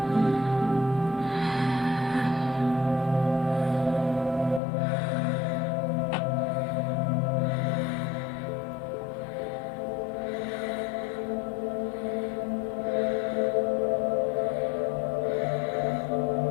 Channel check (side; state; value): right; drops out; at 4.6 s